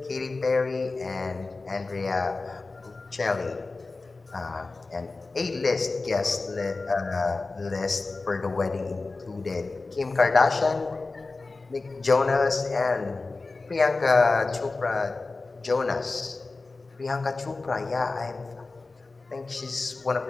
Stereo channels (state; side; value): quieter; right; 3.6 dB